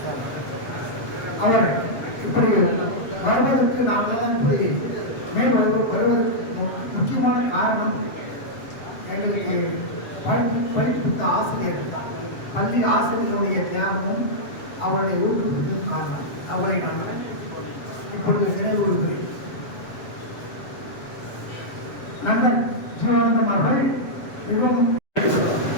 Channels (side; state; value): right; late; 7.6 ms